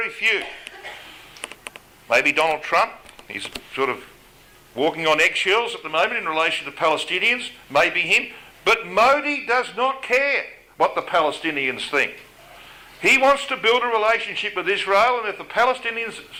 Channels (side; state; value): both; identical; correlation 1.00